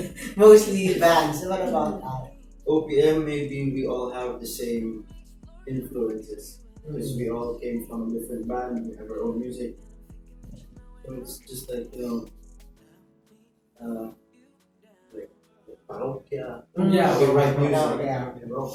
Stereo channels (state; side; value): identical; both; correlation 1.00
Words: mostly bands. What about that? OPM, maybe we all have the same influences because we all came from a different band. We have our own music, so it's just like like parokya. Yeah, We write music. Yeah.